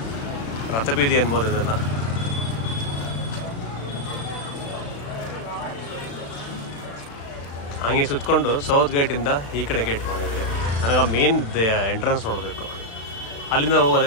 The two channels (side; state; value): right; late; 35 ms